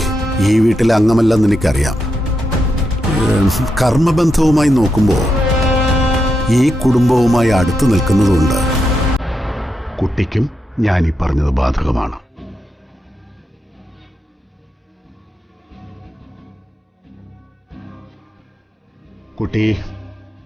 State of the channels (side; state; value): both; normal; correlation 0.85